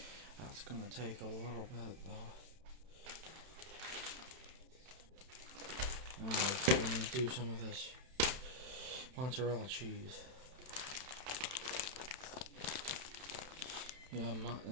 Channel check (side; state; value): left; late; 31 ms